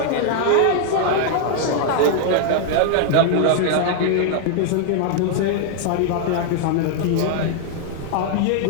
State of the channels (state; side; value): different; both; correlation 0.00